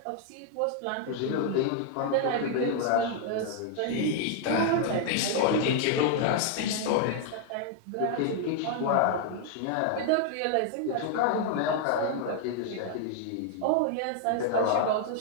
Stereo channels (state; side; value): different; both; correlation 0.00